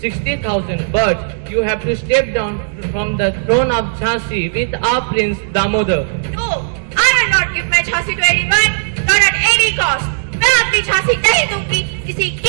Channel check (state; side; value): silent; left; digital silence